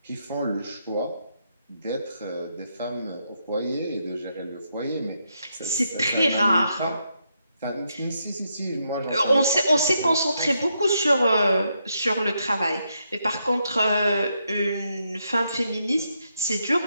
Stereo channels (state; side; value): inverted; both; correlation -0.80